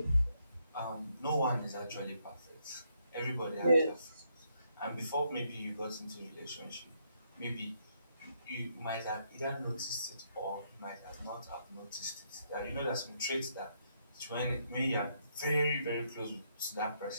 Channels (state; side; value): inverted; both; correlation -0.75